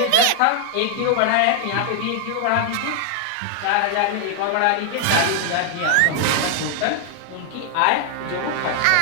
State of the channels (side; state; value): both; different; correlation 0.00